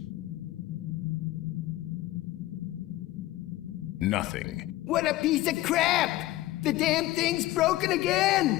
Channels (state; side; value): quieter; right; 16.6 dB